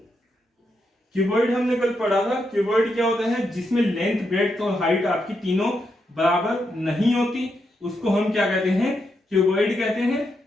क्यूबॉइड हमने कल पढ़ा था। क्यूबॉइड क्या होता है, जिसमें लेंथ ब्रेड्थ और हाइट आपकी तीनों बराबर नहीं होती, उसको हम क्या कहते हैं, क्यूबॉइड कहते हैं।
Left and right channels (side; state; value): both; normal; correlation 0.82